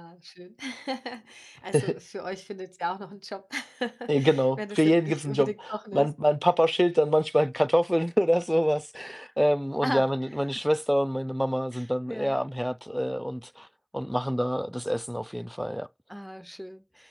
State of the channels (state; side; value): identical; both; correlation 1.00